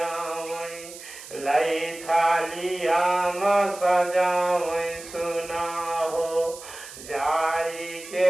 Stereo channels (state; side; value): noise; right; hiss, 15 dB below the sound